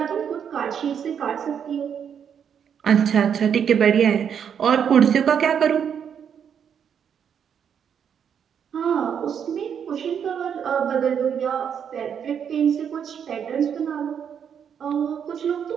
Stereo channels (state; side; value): quieter; left; 7.9 dB